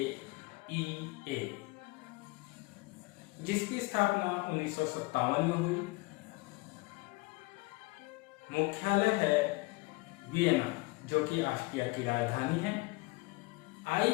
जिसकी स्थापना 1957 में हुई। मुख्यालय है वियना, जो कि ऑस्ट्रिया की राजधानी है।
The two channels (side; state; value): right; quieter; 23.8 dB